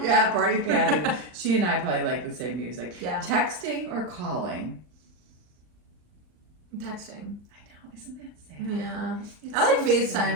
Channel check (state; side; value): late; left; 39 ms